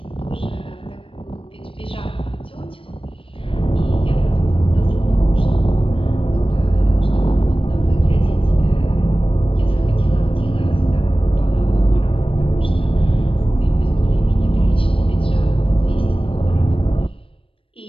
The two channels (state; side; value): late; right; 0.26 ms